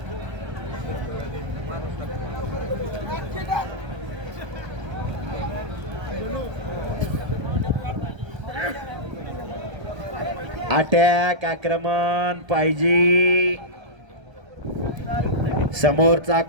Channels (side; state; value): left; late; 1.3 ms